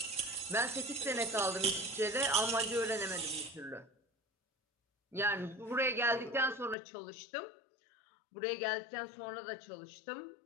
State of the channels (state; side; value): drops out; right; at 6.8 s